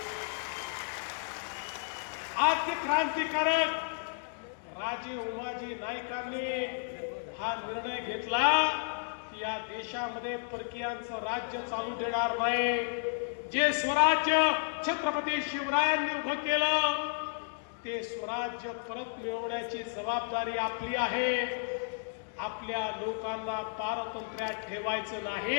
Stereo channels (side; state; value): right; silent; digital silence